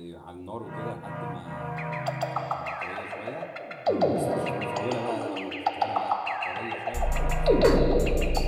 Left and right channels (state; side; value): identical; both; correlation 1.00